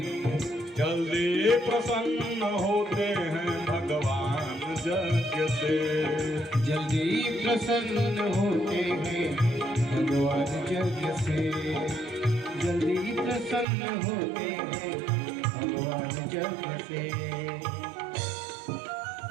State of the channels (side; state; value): left; drops out; at 13.7 s